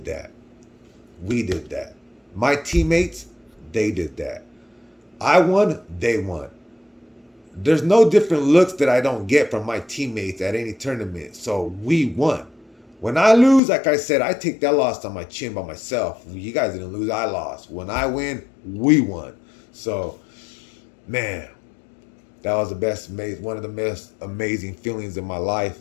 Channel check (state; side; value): drops out; right; at 13.6 s